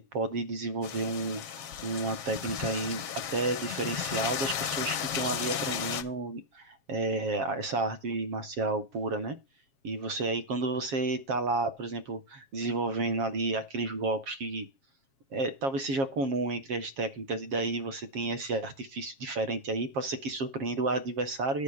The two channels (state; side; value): late; left; 7.4 ms